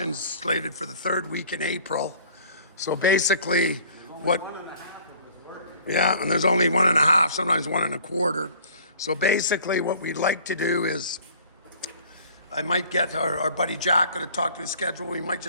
slated for the third week in April. So basically, yeah, and there's only 1.5, sometimes 1.25. So basically what we'd like to do is, I might get our buddy Jack to talk to his schedule. We might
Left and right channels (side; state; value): both; inverted; correlation -0.51